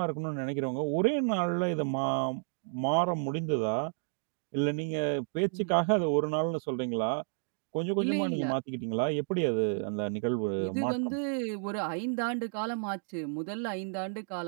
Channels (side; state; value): left; silent; 57 dB below the other